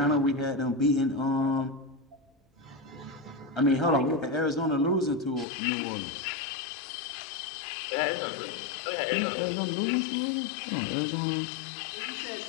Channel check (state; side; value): drops out; right; at 5.5 s